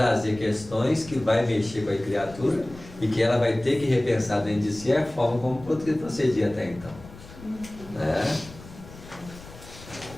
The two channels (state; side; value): noise; left; rumble, 18 dB below the sound